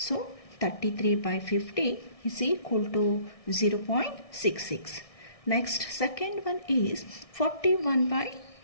33 by 50 is equal to 0.66. Next, second one is 41 by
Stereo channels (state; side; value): late; right; 1.6 ms